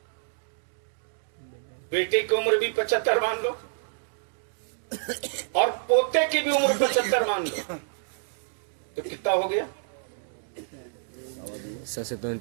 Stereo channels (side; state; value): left; silent; digital silence